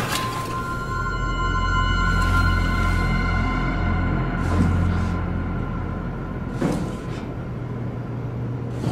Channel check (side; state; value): both; identical; correlation 1.00